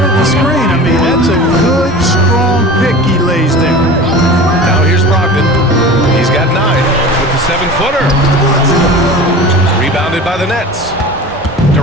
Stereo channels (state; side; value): normal; both; correlation 0.36